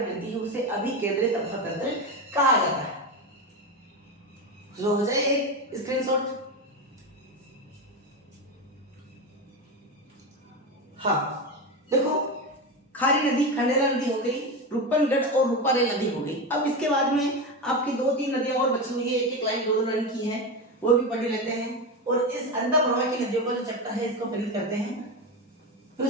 गिरती है, उसे अभिकेंद्रित अफवाह तंत्र कहा जाता है। जो हो जाए एक स्क्रीनशॉट। हाँ देखो, खारी नदी, खंडेला नदी हो गई, रूपनगढ़ और रूपारेल नदी हो गई। अब इसके बाद में आपकी 2-3 नदियां और बची हुई है, एक एक लाइन 2-2 लाइन की है, वो भी पढ़ लेते हैं। और इस अंधा प्रवाह की नदियों का जो चैप्टर है इसको फिनिश करते हैं। फिर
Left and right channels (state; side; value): normal; both; correlation 0.18